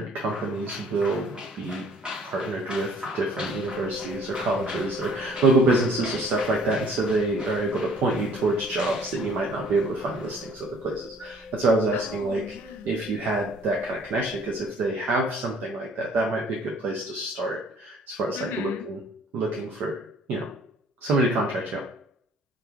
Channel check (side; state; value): both; normal; correlation 0.56